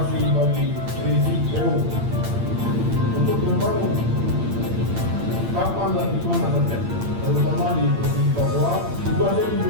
bagi Risi PU untuk membangun kapan dan di mana saja, terutama di Provinsi Papua. Tugasnya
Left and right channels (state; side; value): late; left; 8.8 ms